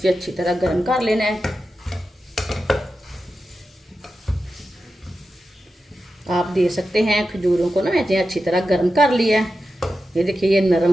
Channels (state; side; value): normal; both; correlation 0.91